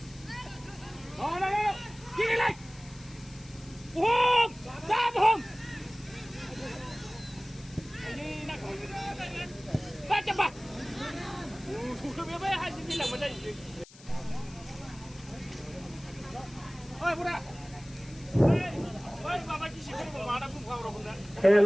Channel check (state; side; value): noise; left; hiss, 21 dB below the sound